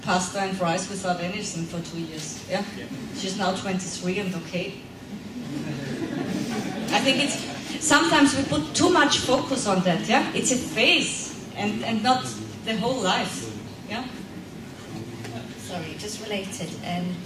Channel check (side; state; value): both; identical; correlation 1.00